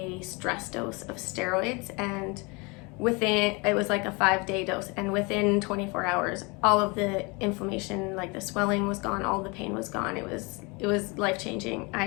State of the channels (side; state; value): right; quieter; 28.5 dB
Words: stress dose of steroids, and it was like a 5-day dose, and within 24 hours, all of the inflammation, like the swelling was gone, all the pain was gone. It was life-changing.